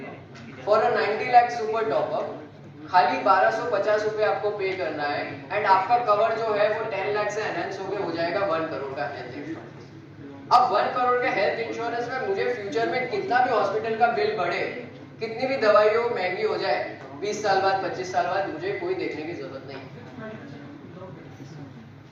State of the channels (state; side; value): identical; both; correlation 1.00